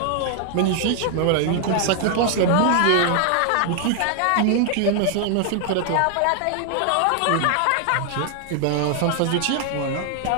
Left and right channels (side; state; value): both; different; correlation 0.00